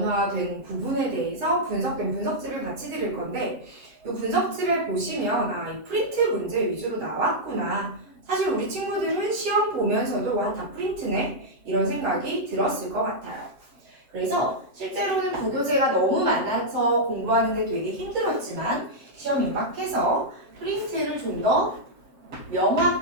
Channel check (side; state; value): left; late; 7.6 ms